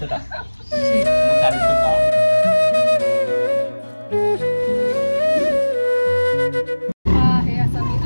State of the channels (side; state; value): both; inverted; correlation -1.00